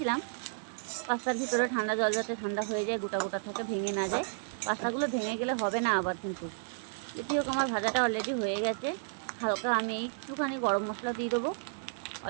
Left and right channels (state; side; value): silent; left; digital silence